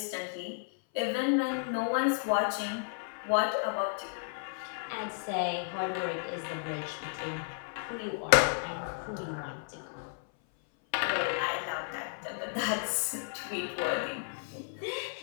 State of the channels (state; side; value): silent; right; 56 dB below the other